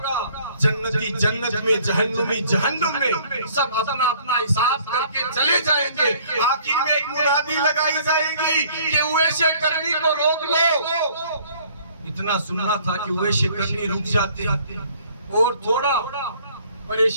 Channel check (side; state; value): both; inverted; correlation -0.57